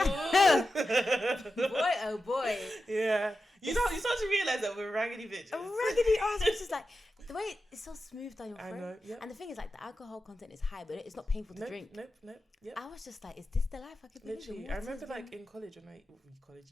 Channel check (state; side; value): normal; both; correlation 0.91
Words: oh boy, yeah. You start to realise that we're raggedy bitches. A raggedy ass, which is like the way it's so smooth down your throat. I know, yep. And the thing is, like, the alcohol content is high, but it's not painful to drink. Nope. Yep. I was just like, is this the life I could live? Literally, I remember like in college